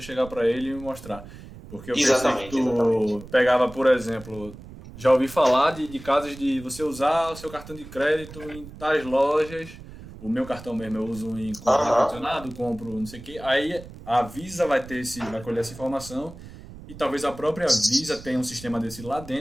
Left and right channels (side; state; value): right; noise; rumble, 16 dB below the sound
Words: chegar para ele e mostrar. Porque eu pensei que Exatamente, exatamente. tu pegava, por exemplo, já ouvi falar de casos de você usar o seu cartão de crédito em tais lojas. O meu cartão mesmo eu uso em comprar Aham. ar-condicionado, compro não sei o quê. Aí a Visa vai colher essa informação e talvez a própria Visa tenha um sistema desse lá